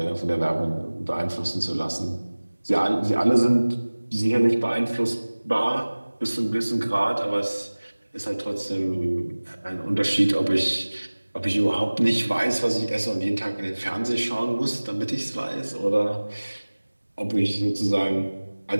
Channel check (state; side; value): inverted; both; correlation -1.00